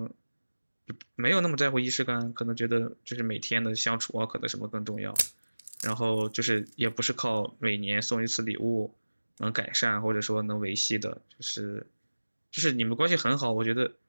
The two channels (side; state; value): both; inverted; correlation -1.00